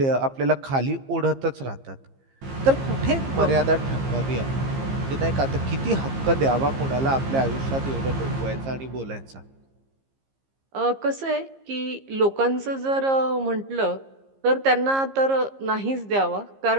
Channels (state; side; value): late; left; 15 ms